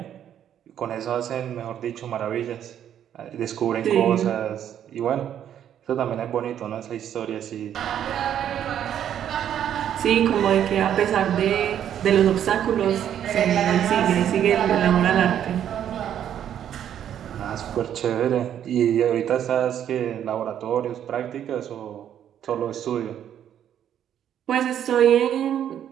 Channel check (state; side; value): quieter; left; 10.0 dB